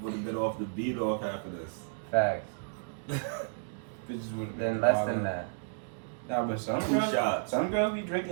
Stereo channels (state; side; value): silent; left; digital silence